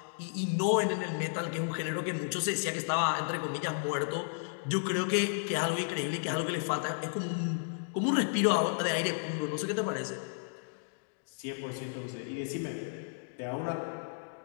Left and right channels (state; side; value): silent; right; digital silence